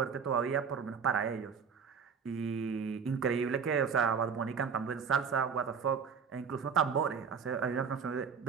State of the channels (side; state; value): left; quieter; 6.3 dB